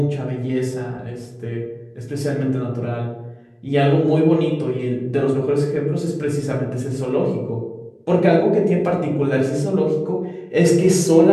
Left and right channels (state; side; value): identical; both; correlation 1.00